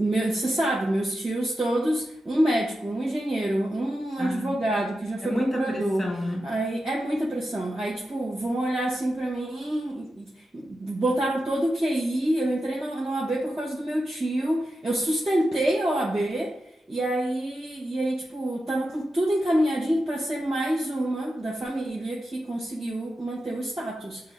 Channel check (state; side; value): normal; both; correlation 0.90